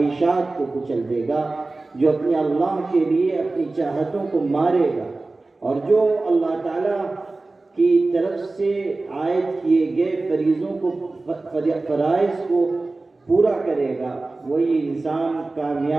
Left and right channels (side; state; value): left; quieter; 3.3 dB